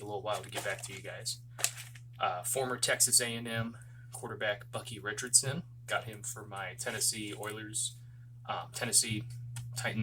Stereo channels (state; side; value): identical; both; correlation 1.00